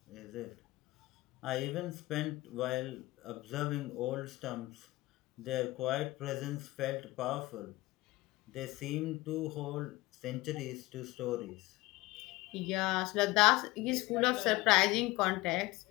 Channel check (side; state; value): right; quieter; 19.8 dB